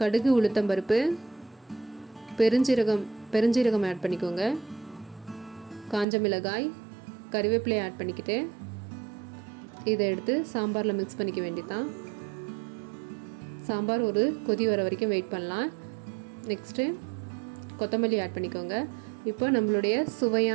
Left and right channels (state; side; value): drops out; left; at 6.1 s